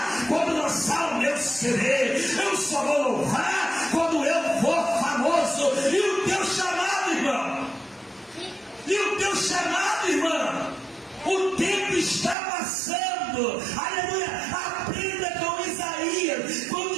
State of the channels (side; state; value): left; drops out; at 12.4 s